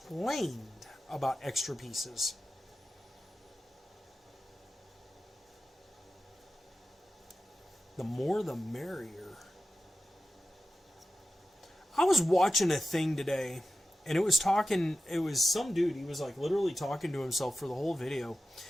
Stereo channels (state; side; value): normal; both; correlation 0.93